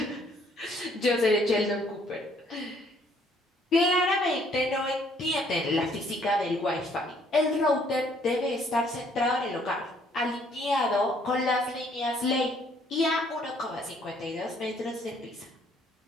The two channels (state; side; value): normal; both; correlation 0.64